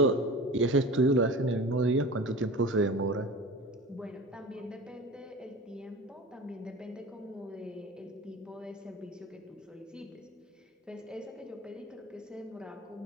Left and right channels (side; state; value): both; normal; correlation 0.35